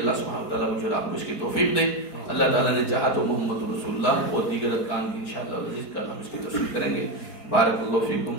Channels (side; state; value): right; late; 4.4 ms